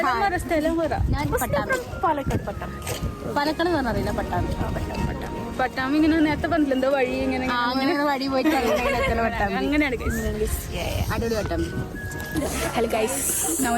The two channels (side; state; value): both; identical; correlation 1.00